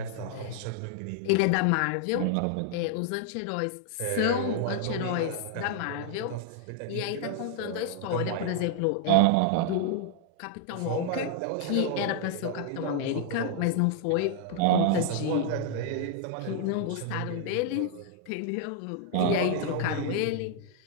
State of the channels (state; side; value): different; both; correlation -0.01